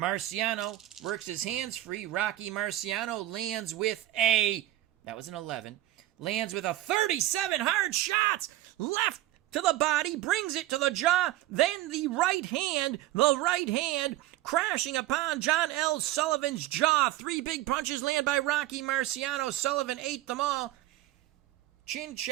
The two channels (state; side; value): quieter; left; 14.9 dB